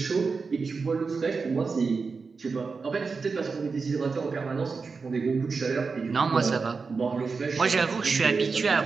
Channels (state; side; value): quieter; left; 4.7 dB